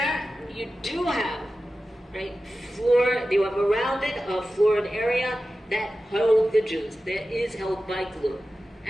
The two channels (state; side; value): normal; both; correlation 0.94